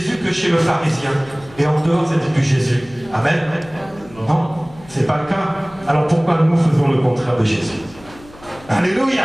que chez le pharisien, et en dehors c'était plus Jésus. Amen. Non, c'est pas le cas. Alors pourquoi nous faisons le contraire de Jésus? Alléluia.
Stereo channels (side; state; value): left; noise; hum, 22 dB below the sound